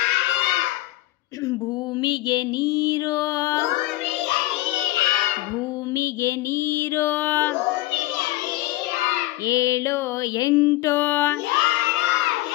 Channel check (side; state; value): right; quieter; 17.5 dB